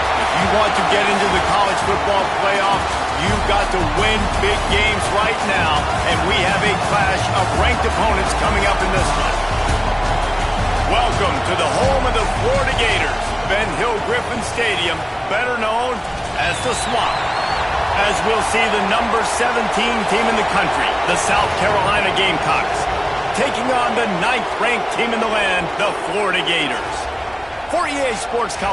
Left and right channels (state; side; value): identical; both; correlation 1.00